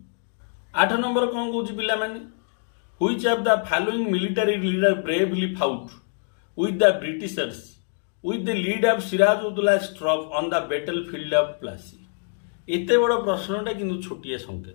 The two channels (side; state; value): right; silent; 62 dB below the other